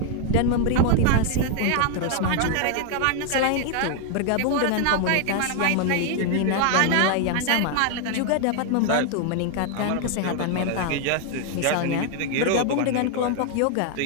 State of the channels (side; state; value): both; different; correlation 0.01